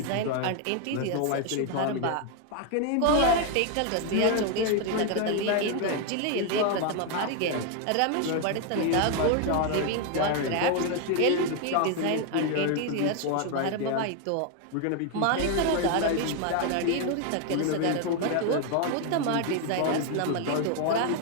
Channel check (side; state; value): both; different; correlation 0.01